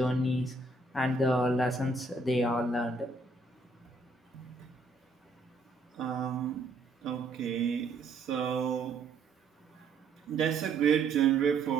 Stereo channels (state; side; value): quieter; left; 3.4 dB